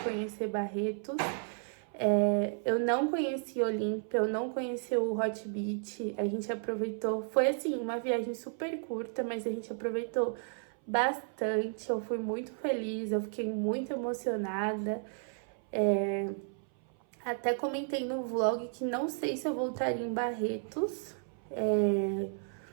conhecer Barretos. Eu não conheci Olímpia, eu não conheci o Hot Beach. A gente aproveitou, foi assim, uma viagem super curta, mas a gente aproveitou bastante. Eu fui muito feliz, eu fiquei muito emocionada. Até comentei no vlog que não sei se eu voltaria em Barretos,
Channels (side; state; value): left; silent; 56 dB below the other